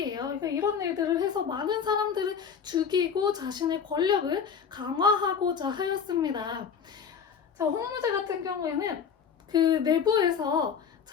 그러니까 이런 일들을 해서 많은 사람들을 죽이고 자신의 권력을 강화하고자 하였습니다. 자, 홍무제 같은 경우에는 그 내부에서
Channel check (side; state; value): right; quieter; 6.9 dB